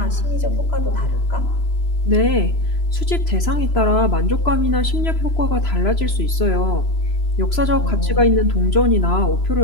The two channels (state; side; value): late; right; 3.0 ms